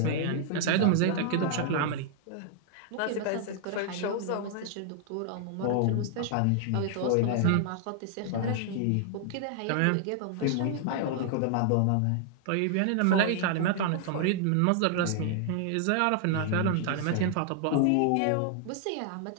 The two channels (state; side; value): different; both; correlation 0.00